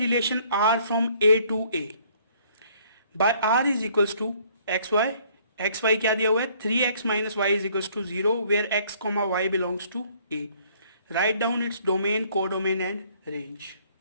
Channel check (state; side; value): inverted; both; correlation -0.61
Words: R from A to A by R is equals to X Y. X Y क्या दिया हुआ है, 3x minus Y is equals to 0 where x comma Y belongs to A. Write down its domain, codomain and range.